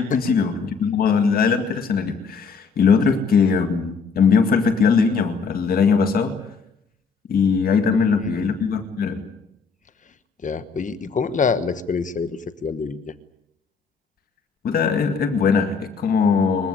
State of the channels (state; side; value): quieter; right; 5.3 dB